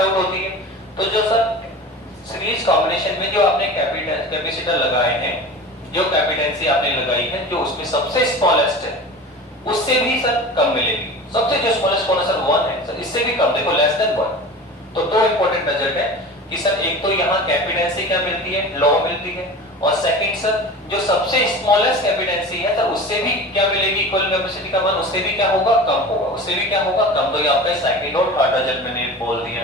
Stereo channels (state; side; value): normal; both; correlation 0.34